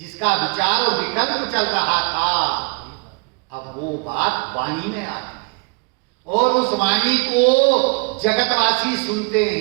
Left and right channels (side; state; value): left; quieter; 32.0 dB